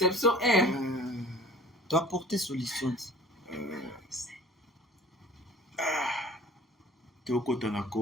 est. Tu as apporté solution. Tu es au côté na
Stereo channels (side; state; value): both; normal; correlation 0.46